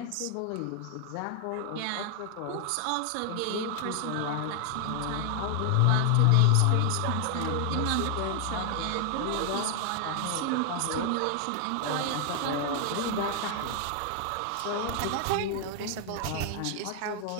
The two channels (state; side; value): different; both; correlation 0.00